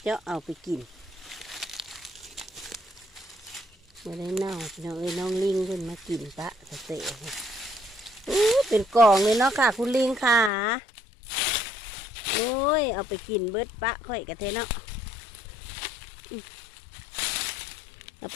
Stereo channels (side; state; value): right; drops out; at 10.5 s